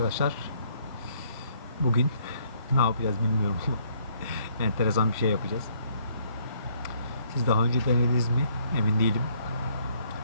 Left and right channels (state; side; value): inverted; both; correlation -0.66